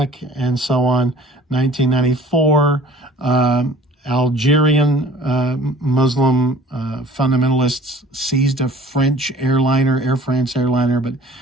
and so on. 1994, Algerian Muslim fundamentalists seized a French airliner, Air France airliner, but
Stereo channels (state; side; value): normal; both; correlation 0.49